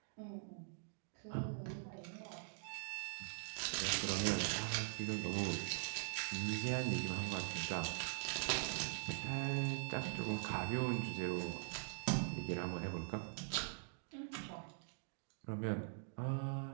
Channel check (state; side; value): silent; left; digital silence